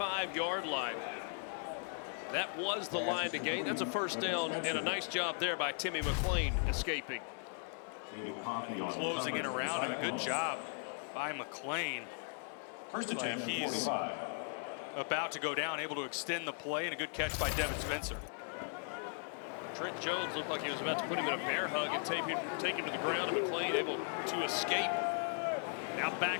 line. That was the line to gain. That's a first down, and a nice job there by Timmy McClain escaping. Closing in around him, a good job by McClain. Looks like he's about to go down, able to extend the play, and a good catch by Devin Spencer. Trent Jones looked like he was about to put him in a bear hug and take him to the ground, and McClain able to escape. Now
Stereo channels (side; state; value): right; silent; 53 dB below the other